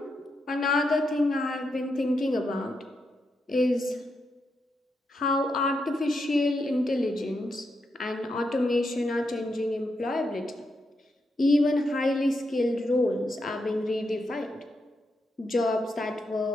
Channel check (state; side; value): normal; both; correlation 0.83